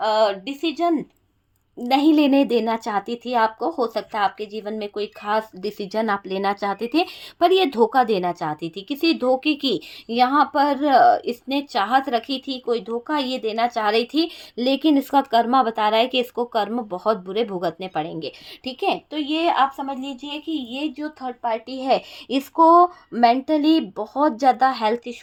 डिसीजन नहीं लेने देना चाहती थी आपको। हो सकता है आपके जीवन में कोई खास डिसीजन आप लेना चाहते थे, पर ये धोखा देना चाहती थी। किसी धोखे की यहाँ पर इसने चाहत रखी थी, कोई धोखा ये देना चाह रही थी, लेकिन इसका कर्मा बता रहा है कि इसको कर्म बहुत बुरे भुगतने पड़ेंगे। ठीक है, तो ये आप समझ लीजिए कि ये जो थर्ड पार्टी है, इसको मेंटली बहुत ज़्यादा हेल्थ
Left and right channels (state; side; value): identical; both; correlation 1.00